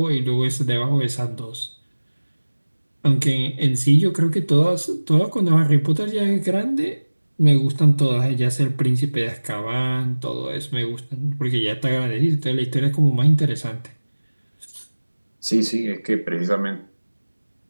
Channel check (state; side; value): inverted; both; correlation -1.00